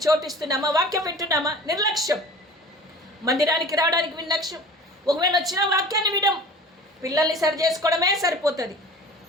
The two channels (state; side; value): normal; both; correlation 0.41